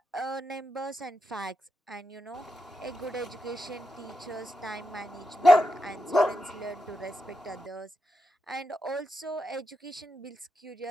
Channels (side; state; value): both; normal; correlation 0.86